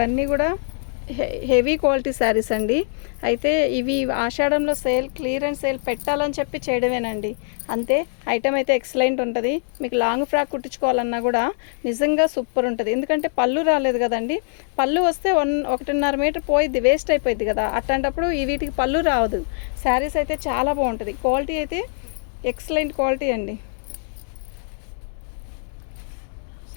కూడా హెవీ క్వాలిటీ శారీస్ అండి. అయితే ఇవి ఆషాఢంలో క్లియరెన్స్ సేల్ పెట్టాలని చెప్పి చేయడమేనండి, అంతే. ఐటమ్ అయితే ఎక్సలెంట్ ఉంటుంది. మీకు లాంగ్ ఫ్రాక్ కుట్టించుకోవాలన్నా కూడా నిజంగా సూపర్ ఉంటుంది. ఎందుకంటే పళ్ళు రాలేదు కదండి. పళ్ళు వస్తే 1.5 మీటర్ పోయిద్ది, వేస్ట్ అయిపోయింది కదా. అట్లాంటప్పుడు వీటికి పళ్ళు రావదు. శారీస్ అయితే చాలా బాగుంటుంది. క్వాలిటీ అయితే ఎక్సలెంట్ క్వాలిటీ అండి.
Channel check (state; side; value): silent; right; digital silence